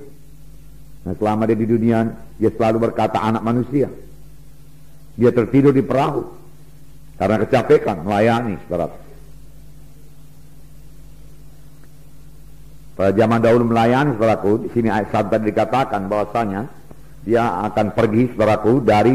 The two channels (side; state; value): both; identical; correlation 1.00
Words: Nah, selama dia di dunia, dia selalu berkata anak manusia. Dia tertidur di perahu karena kecapekan melayani, saudara. Pada zaman dahulu melayani, saudaraku, di sini ayat 1 tadi dikatakan bahwasanya dia akan pergi, saudaraku,